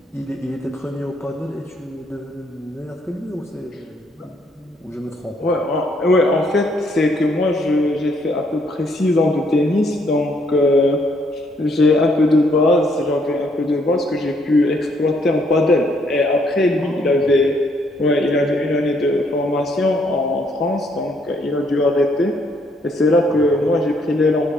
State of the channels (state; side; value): normal; both; correlation 0.69